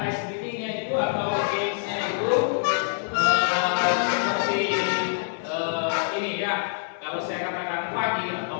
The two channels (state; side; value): silent; right; digital silence